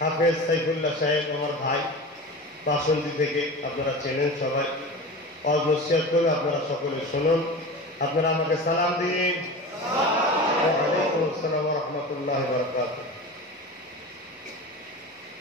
সাইফুল্লাহ সাহেব, আমার ভাই বাসন্তী থেকে, আপনারা চেনেন সবাই। ওয়াজ নসিহত করে আপনারা সকলে শুনুন। আপনারা আমাকে সালাম দিন। ওয়ালাইকুম আসসালাম ওয়া রাহমাতুল্লাহি ওয়া বারাকাতুহু।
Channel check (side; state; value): both; normal; correlation 0.31